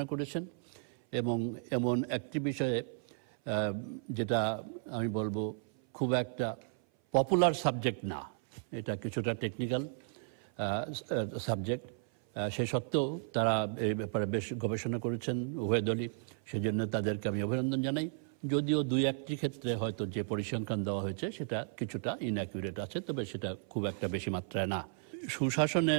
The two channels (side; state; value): left; silent; 55 dB below the other